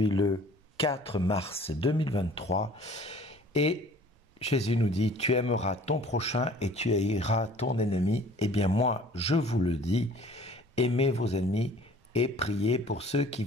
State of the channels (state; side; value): normal; both; correlation 0.50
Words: le 4 mars 2023 et Jésus nous dit « Tu aimeras ton prochain et tu haïras ton ennemi ». Eh bien moi, je vous le dis, aimez vos ennemis et priez pour ceux qui